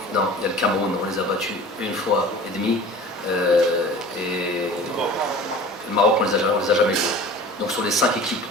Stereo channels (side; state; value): both; normal; correlation 0.42